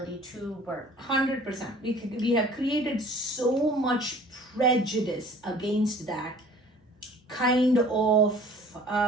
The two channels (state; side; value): normal; both; correlation 0.49